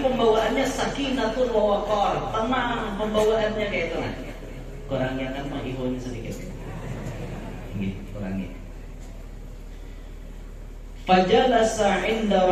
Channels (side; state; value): both; identical; correlation 1.00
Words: pembawaannya sakinatun wa waqar, tenang pembawaannya kayak itu. Nah, kurangnya kan menghiburnya sedikit. Ini kurangnya. Fajalasa inda